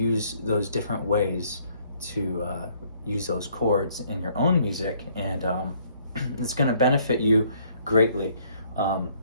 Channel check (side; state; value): both; inverted; correlation -0.65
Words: those different ways to use those chords in your own music, and it's going to benefit you greatly.